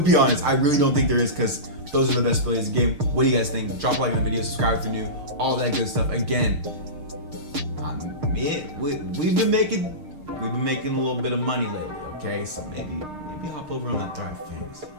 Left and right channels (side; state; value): left; late; 6.6 ms